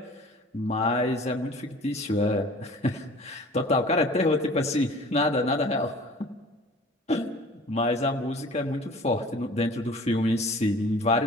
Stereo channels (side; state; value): both; normal; correlation 0.46